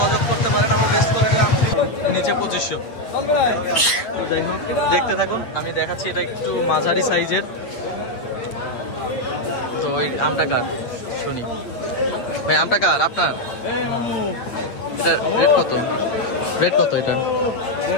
করতে পারেন। আমরা বেস্ট কোয়ালিটির আম নিচে 2500। যাই হোক, দেখতে থাকুন। আমি দেখাচ্ছি, এটা একটু মাঝারি সাইজের। তো ওই আমটা কার শুনি ভাই? আমটা কার? আপনার? এটা রেট কত? রেট কত এটা?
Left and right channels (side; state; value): right; late; 8.5 ms